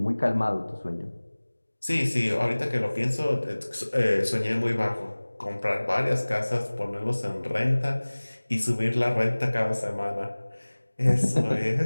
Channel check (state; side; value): inverted; both; correlation -1.00